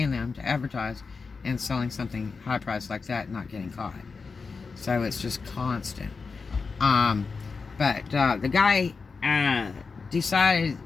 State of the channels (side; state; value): right; quieter; 4.7 dB